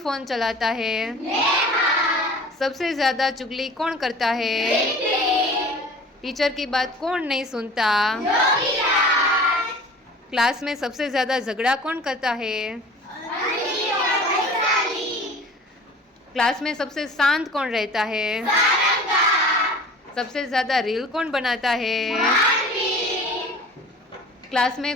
चलाता है? सबसे ज्यादा चुगली कौन करता है? टीचर की बात कौन नहीं सुनता? क्लास में सबसे ज्यादा झगड़ा कौन करता है? क्लास में सबसे शांत कौन रहता है? सबसे ज्यादा रील कौन बनाता है? क्लास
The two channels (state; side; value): normal; both; correlation 0.43